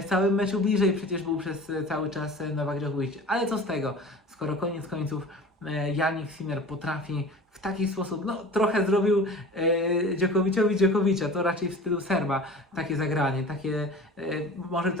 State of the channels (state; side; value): normal; both; correlation 0.40